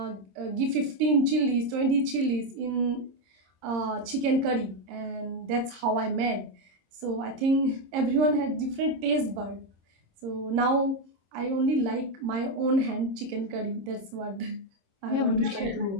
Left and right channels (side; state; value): left; late; 26 ms